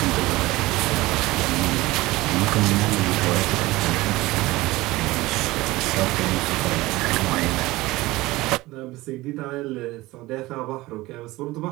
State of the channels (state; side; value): quieter; left; 19.4 dB